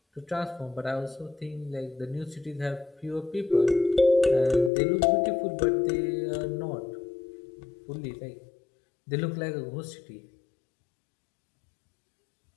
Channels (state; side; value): drops out; right; at 4.7 s